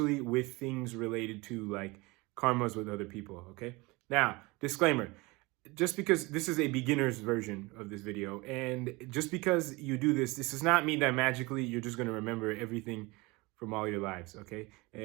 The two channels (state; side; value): quieter; left; 24.1 dB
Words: with things related to like karmas with other people, okay? Now, disclaimer, just because this is a beginner's version of this video, and just because you do this, this does not mean that magically you're just going to remember everything from all your lives, okay?